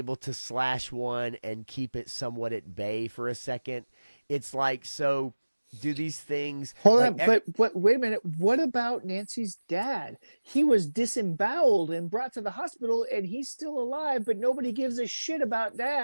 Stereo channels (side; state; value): both; inverted; correlation -1.00